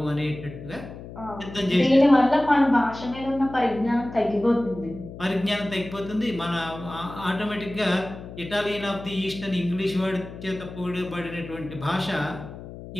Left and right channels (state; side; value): noise; left; hum, 13 dB below the sound